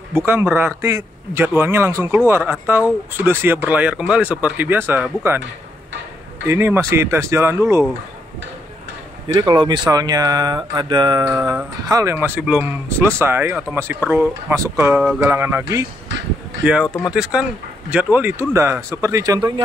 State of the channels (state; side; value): normal; both; correlation 0.77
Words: bukan berarti jadwalnya langsung keluar atau sudah siap berlayar kembali seperti biasa, bukan. Ini masih tes jalan dulu. Jadi kalau misalnya ada hal yang masih belum selesai atau masih perlu masuk ke galangan lagi, ya otomatis kan jadwal ditunda. Seperti